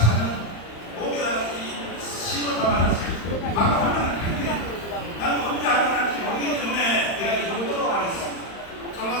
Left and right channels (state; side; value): late; right; 35 ms